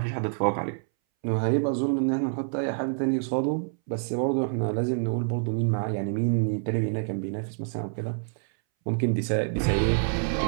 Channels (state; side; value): silent; left; 60 dB below the other